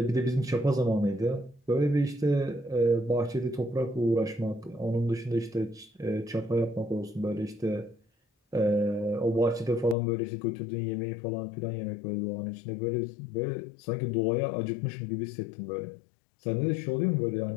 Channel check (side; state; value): right; drops out; at 10.0 s